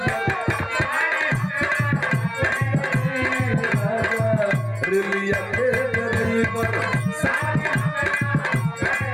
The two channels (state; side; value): identical; both; correlation 1.00